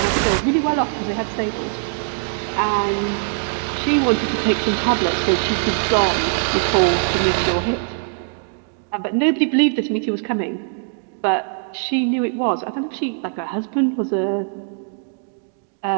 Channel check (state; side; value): silent; left; digital silence